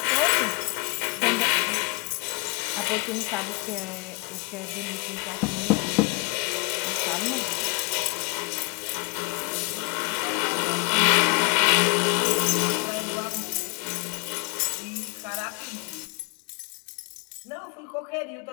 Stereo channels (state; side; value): quieter; right; 30.4 dB